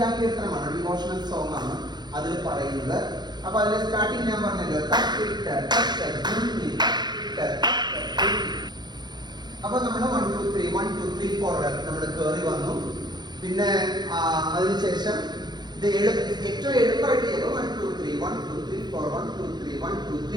ഡിവോഷണൽ സോങ് ആണ് അതിൽ പറയുന്നത്. അപ്പൊ അതിന്റെ സ്റ്റാർട്ടിങ് ഞാൻ പറഞ്ഞല്ലോ. അപ്പൊ നമ്മൾ 1 2 3 1 2 3 4 നമ്മൾ കയറി വന്നു. പിന്നെ അതിനുശേഷം ഇത് ഏറ്റവും എളുപ്പമായിട്ട് ചെയ്തു. 1 2 3 1 2 3 4 1 2 3 1 2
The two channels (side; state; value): left; late; 0.21 ms